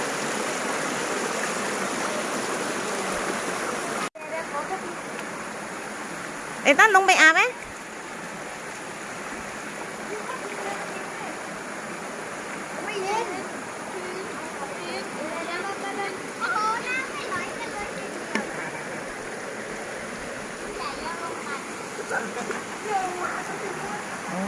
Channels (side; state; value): both; identical; correlation 1.00